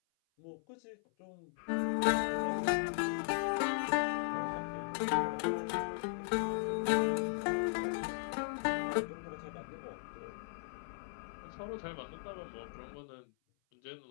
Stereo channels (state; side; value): silent; right; 53 dB below the other